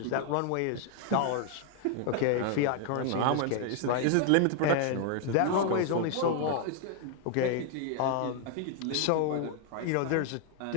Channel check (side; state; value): both; different; correlation 0.00